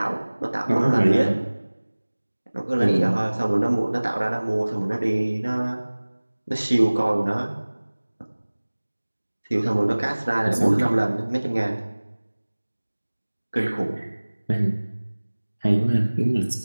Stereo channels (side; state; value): both; inverted; correlation -1.00